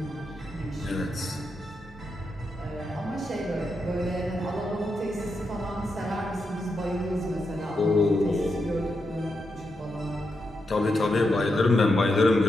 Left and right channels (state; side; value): normal; both; correlation 0.85